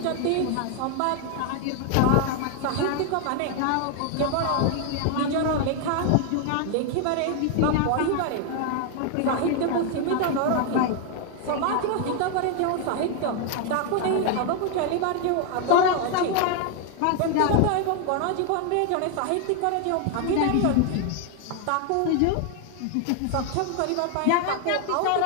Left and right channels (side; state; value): both; different; correlation 0.00